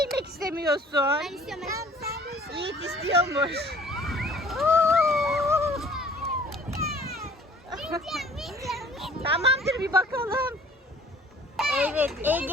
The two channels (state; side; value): normal; both; correlation 0.52